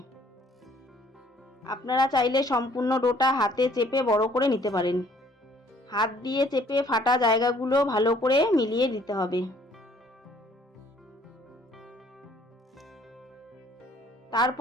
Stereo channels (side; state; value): both; normal; correlation 0.60